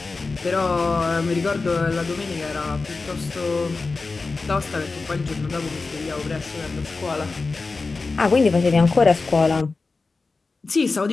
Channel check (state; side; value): quieter; right; 3.9 dB